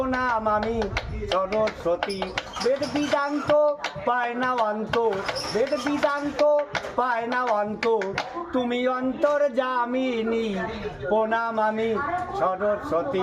আমি সরস্বতী, বেদ বিদান্ত পায় না অন্ত, বেদ বিদান্ত পায় না অন্ত, তুমি অন্তর জামিনী। প্রণাম আমি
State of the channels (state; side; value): identical; both; correlation 1.00